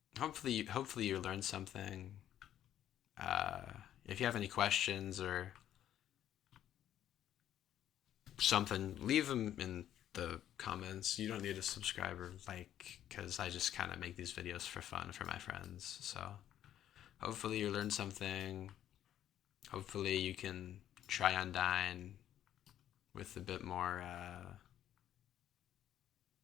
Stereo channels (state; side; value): quieter; right; 11.2 dB